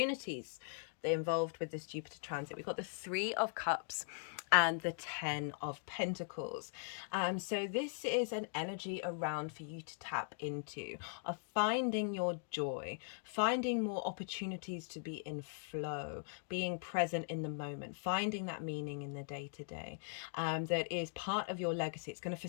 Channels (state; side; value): silent; right; digital silence